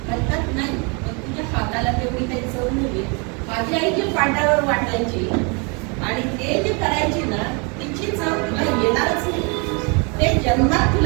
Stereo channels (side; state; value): left; quieter; 32.9 dB